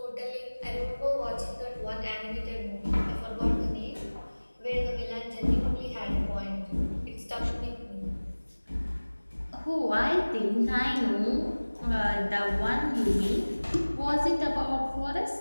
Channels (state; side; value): inverted; both; correlation -1.00